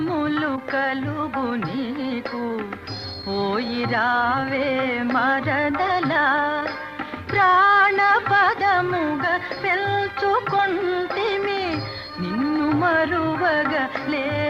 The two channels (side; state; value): both; identical; correlation 1.00